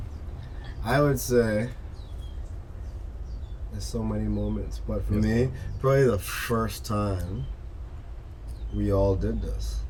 I would say there's so many moments, but for me, probably the first time we all did this.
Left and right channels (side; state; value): both; identical; correlation 1.00